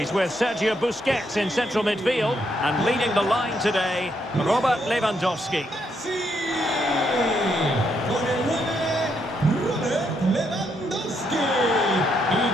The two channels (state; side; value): normal; both; correlation 0.76